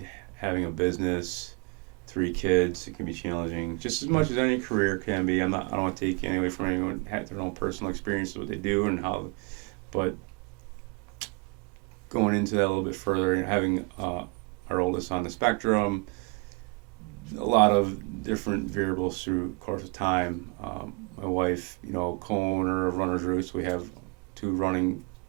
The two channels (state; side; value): quieter; left; 30.5 dB